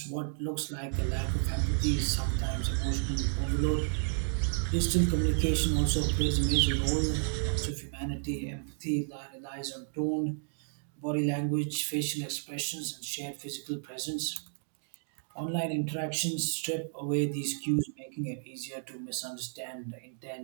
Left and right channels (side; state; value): left; silent; digital silence